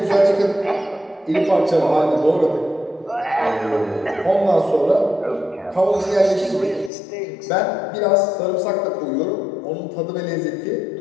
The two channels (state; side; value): drops out; right; at 6.9 s